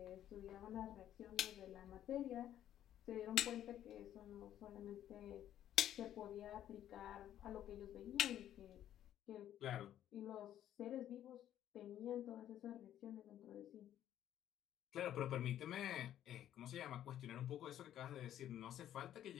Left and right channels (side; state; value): right; quieter; 11.4 dB